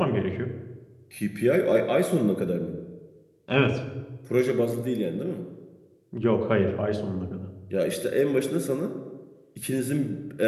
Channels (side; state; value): both; identical; correlation 1.00